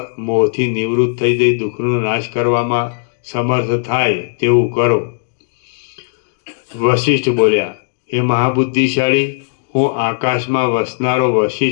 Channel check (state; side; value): silent; right; digital silence